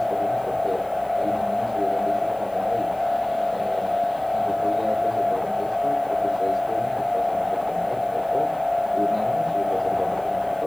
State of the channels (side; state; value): left; noise; hiss, 26 dB below the sound